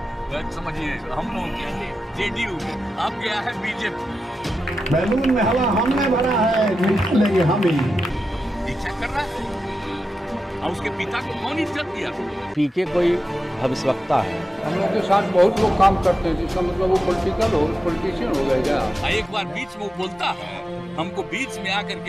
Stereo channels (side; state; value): both; normal; correlation 0.90